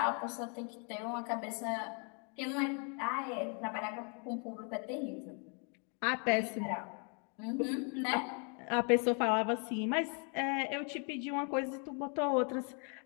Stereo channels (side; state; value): right; quieter; 38.0 dB